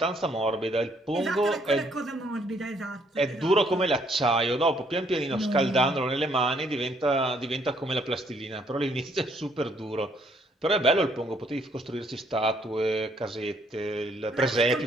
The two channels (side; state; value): both; normal; correlation 0.67